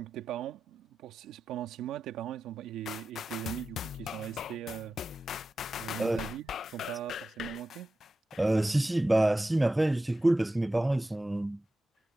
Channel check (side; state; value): both; normal; correlation 0.93